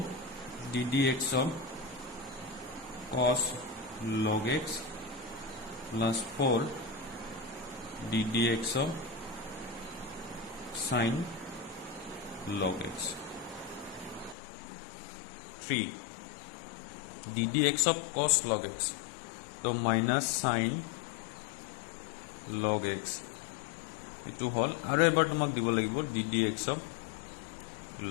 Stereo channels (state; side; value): drops out; right; at 14.4 s